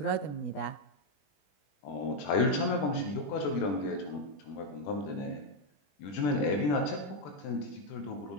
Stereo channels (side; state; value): right; late; 20 ms